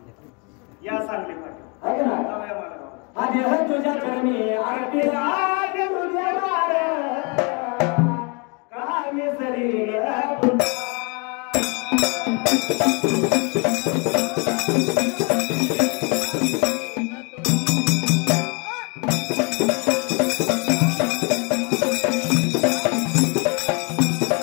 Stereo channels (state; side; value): quieter; right; 32.2 dB